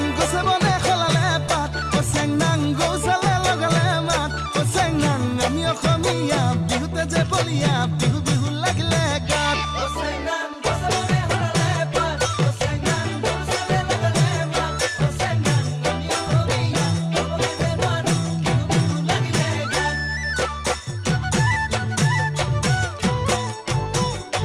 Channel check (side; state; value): both; identical; correlation 1.00